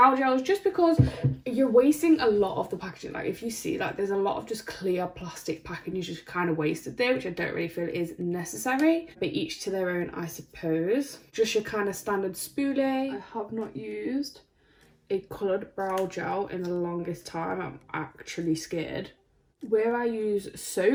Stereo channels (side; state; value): both; identical; correlation 1.00